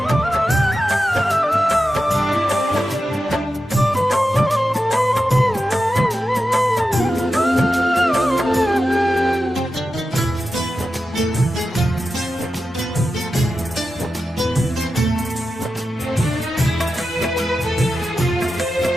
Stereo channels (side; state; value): both; normal; correlation 0.91